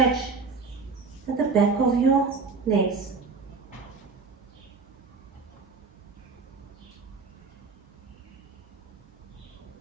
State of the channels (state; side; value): quieter; left; 4.6 dB